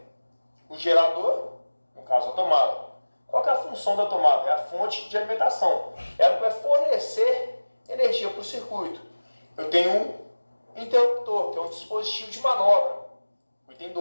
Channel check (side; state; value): both; inverted; correlation -1.00